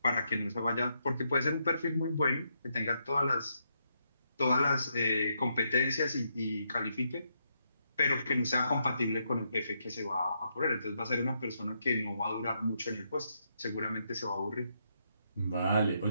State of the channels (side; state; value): both; inverted; correlation -0.79